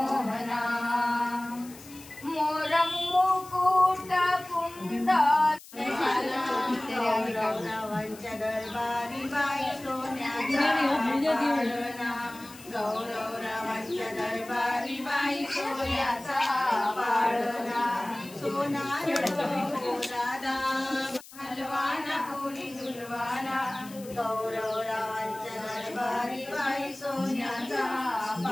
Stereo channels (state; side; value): noise; left; hiss, 19 dB below the sound